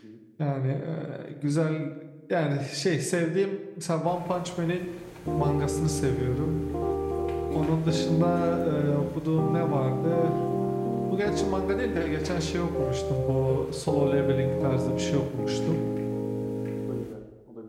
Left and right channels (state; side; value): identical; both; correlation 1.00